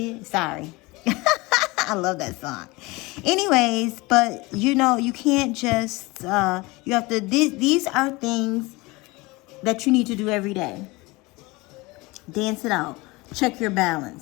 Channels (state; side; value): quieter; right; 23.4 dB